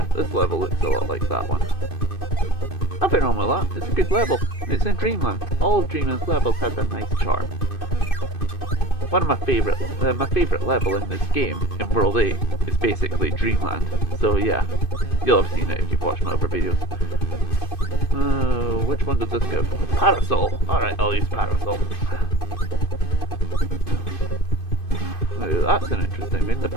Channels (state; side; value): late; right; 2.5 ms